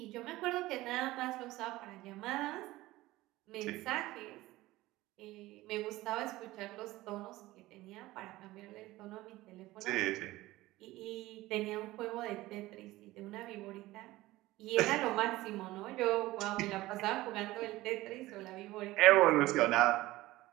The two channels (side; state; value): left; quieter; 17.9 dB